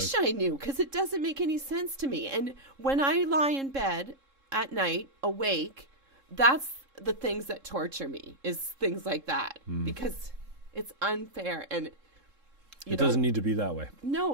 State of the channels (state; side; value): late; left; 3.7 ms